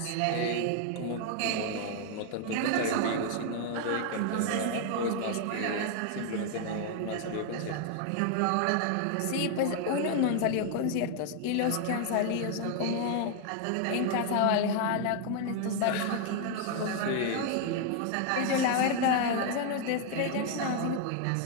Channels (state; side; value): different; both; correlation 0.00